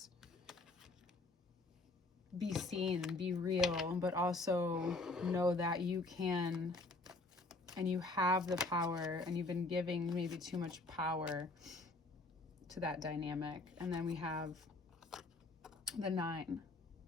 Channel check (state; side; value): quieter; right; 3.1 dB